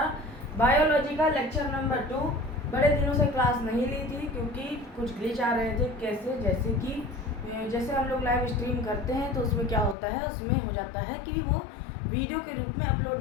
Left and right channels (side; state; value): right; drops out; at 10.0 s